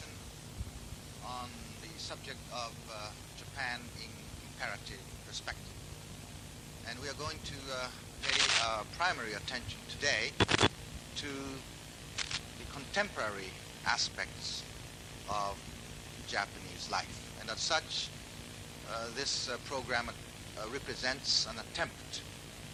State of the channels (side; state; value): both; identical; correlation 1.00